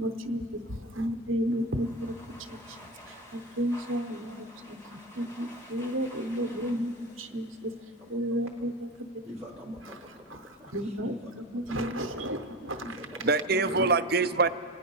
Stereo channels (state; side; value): normal; both; correlation 0.26